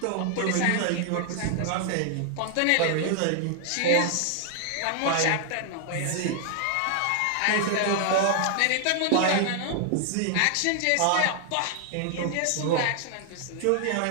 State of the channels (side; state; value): both; different; correlation 0.00